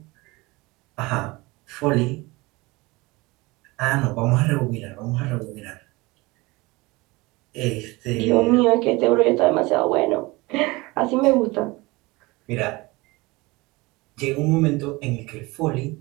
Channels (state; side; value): quieter; left; 23.1 dB